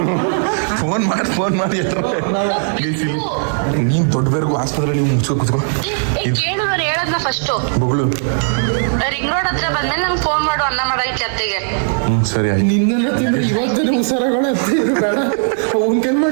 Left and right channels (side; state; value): left; silent; 68 dB below the other